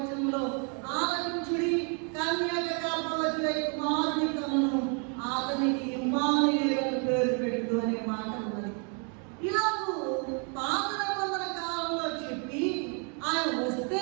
ఆలకించుడి, కన్యక గర్భవతి కుమారుని కనును, అతనికి ఇమ్మానుయేలు పేరు పెట్టు అనే మాట ఉన్నది. ఇలాగూ పాత నిబంధన కాలంలో చెప్పి ఆయన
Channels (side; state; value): left; quieter; 38.6 dB